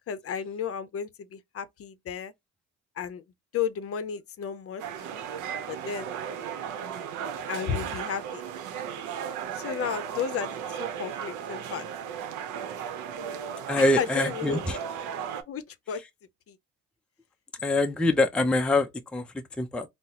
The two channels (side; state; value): both; normal; correlation 0.46